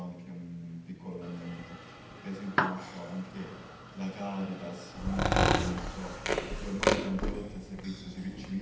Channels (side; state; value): both; identical; correlation 1.00